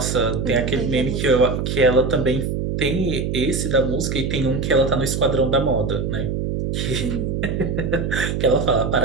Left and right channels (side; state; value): right; noise; hum, 1 dB below the sound